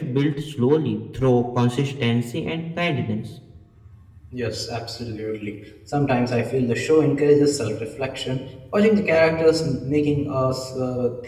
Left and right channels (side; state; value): both; identical; correlation 1.00